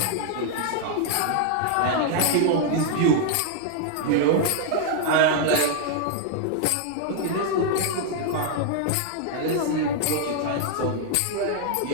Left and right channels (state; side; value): different; both; correlation 0.00